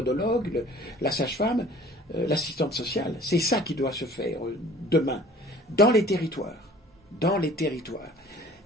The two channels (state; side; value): normal; both; correlation 0.49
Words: la sage-femme, l'assistante sociale. C'est ça qui doit se faire demain, dans les territoires. Dans les territoires.